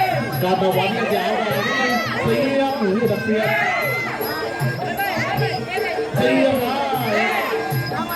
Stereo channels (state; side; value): identical; both; correlation 1.00